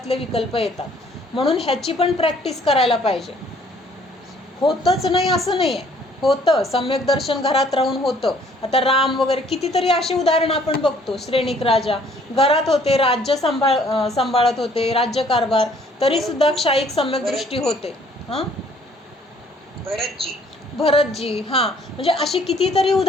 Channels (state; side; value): normal; both; correlation 0.60